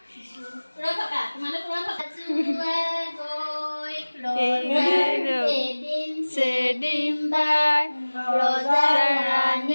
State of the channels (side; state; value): both; inverted; correlation -1.00